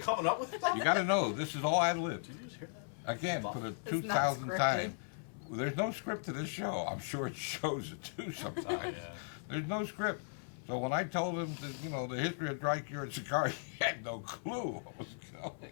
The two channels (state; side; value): silent; right; 53 dB below the other